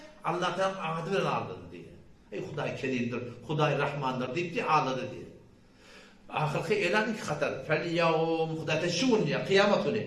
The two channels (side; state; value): both; identical; correlation 1.00